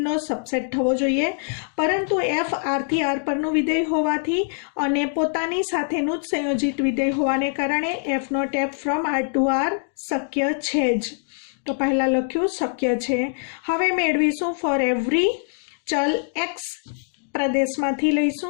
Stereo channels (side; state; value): right; silent; digital silence